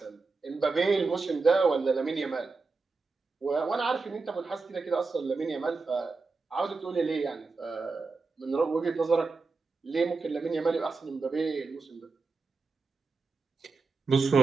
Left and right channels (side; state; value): left; quieter; 4.1 dB